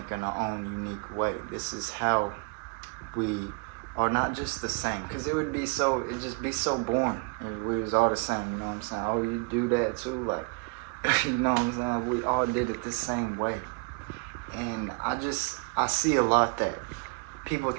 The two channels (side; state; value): left; quieter; 31.6 dB